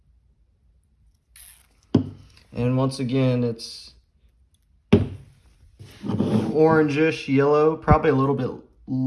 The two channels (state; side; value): identical; both; correlation 1.00